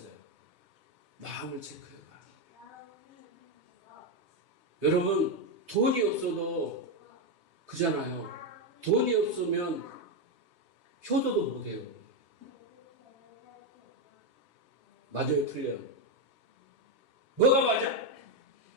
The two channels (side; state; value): left; late; 3.2 ms